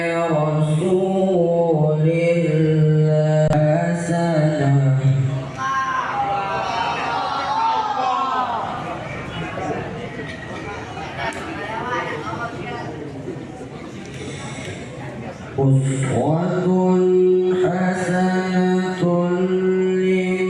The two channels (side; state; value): both; identical; correlation 1.00